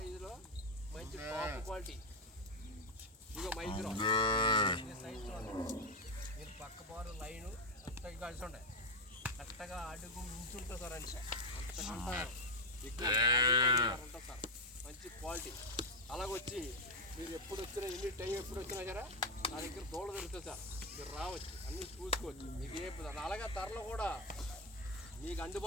మంచి టాప్ క్వాలిటీ. ఇదిగో మైక్రో సైజు మీరు పక్క బారు లైను అంతగా కలిసి ఉండే కరెక్ట్గా అడుగు మించుంటుంది సార్. అంటే అంతకంటే ఎక్కువ ఉంటుంది సార్, మంచి క్వాలిటీ. అలాగొచ్చి మీరు ఎప్పుడు వచ్చినా ఎన్ని టైం ఎప్పుడు వచ్చినా సరే నా దగ్గర దోళ దొరుకుతుంది సార్. మీరు రావచ్చు, అన్నీ చూసుకోవచ్చు. మీకు ఏ అలాగే ధరలు కూడా మీకు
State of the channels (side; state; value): both; normal; correlation 0.06